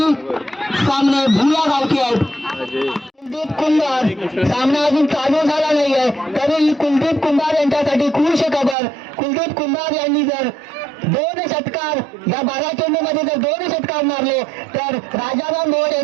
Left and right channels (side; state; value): left; drops out; at 8.8 s